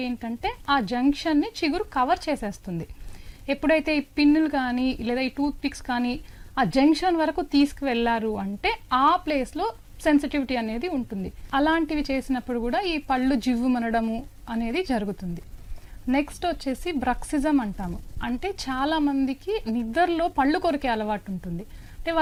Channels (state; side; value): identical; both; correlation 1.00